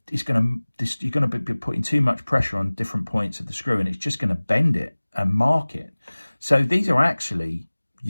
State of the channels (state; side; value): inverted; both; correlation -1.00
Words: be putting too much pressure on different points of the screw, and it's just going to bend it and mark it. So these are actually